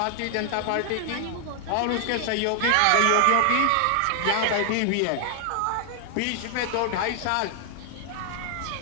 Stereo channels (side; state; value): both; different; correlation 0.00